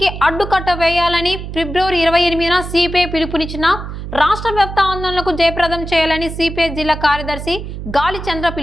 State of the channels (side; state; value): right; noise; hum, 8 dB below the sound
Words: అడ్డుకట్ట వేయాలని ఫిబ్రవరి 28న సిపిఐ పిలుపునిచ్చిన రాష్ట్ర వ్యాప్త ఆందోళనకు జయప్రదం చేయాలని సిపిఐ జిల్లా కార్యదర్శి గాలి చంద్ర